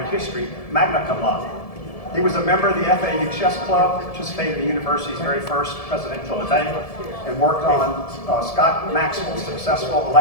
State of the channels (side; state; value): right; late; 1.7 ms